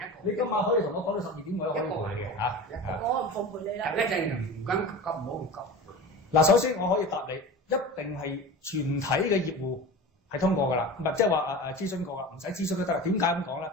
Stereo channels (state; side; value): normal; both; correlation 0.32